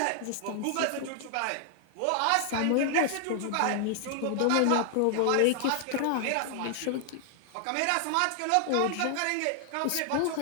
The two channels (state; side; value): different; both; correlation 0.00